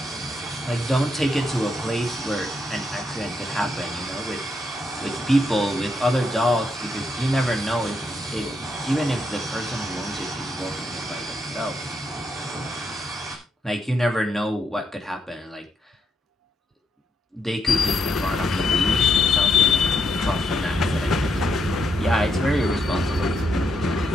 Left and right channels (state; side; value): normal; both; correlation 0.77